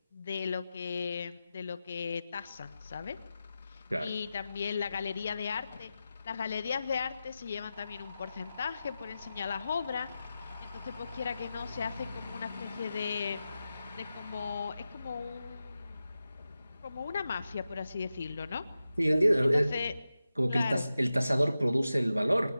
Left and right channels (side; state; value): both; inverted; correlation -0.93